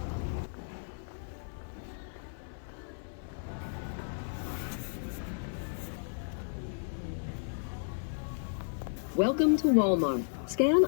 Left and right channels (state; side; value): silent; right; 55 dB below the other